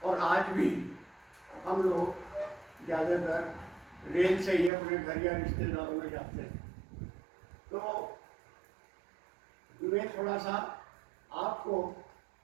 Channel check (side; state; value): left; drops out; at 4.7 s